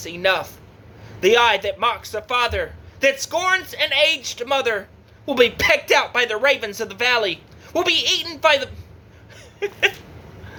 enough. The eye that mocks a father, that scorns an aged mother, will be pecked out by the ravens of the valley, will be eaten by the...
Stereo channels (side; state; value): both; identical; correlation 1.00